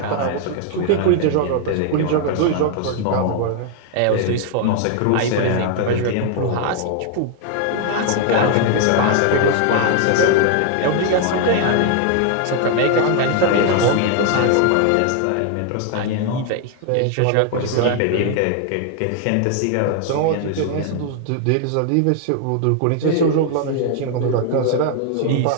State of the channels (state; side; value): different; both; correlation 0.00